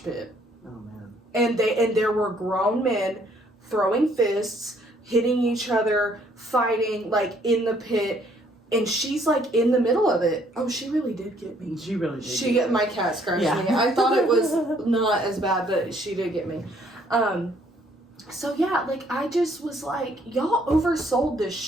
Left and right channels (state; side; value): normal; both; correlation 0.65